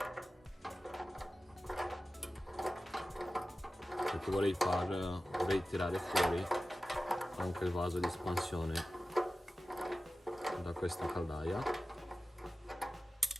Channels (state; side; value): normal; both; correlation 0.95